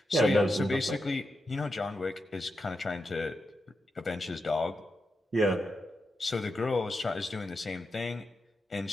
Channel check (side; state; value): both; normal; correlation 0.87